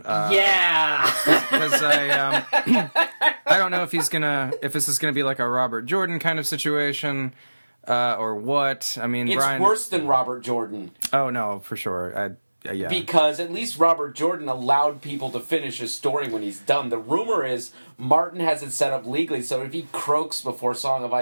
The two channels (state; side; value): inverted; both; correlation -1.00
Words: Yeah. Because I don't know if this is gonna be like a Robert Jordan kind of situation, or what. I mean, it's Brian. Worse than Robert Jordan. Oh no, for sure. Yeah. Because at least Robert Jordan allowed people to finish his story when he's done. The rumor is Martin has it set up legally, so if he croaks before Song of